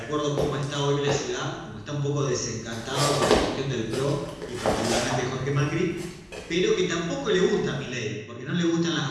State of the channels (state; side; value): identical; both; correlation 1.00